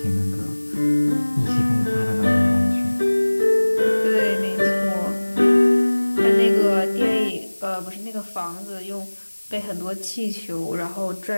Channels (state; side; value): inverted; both; correlation -1.00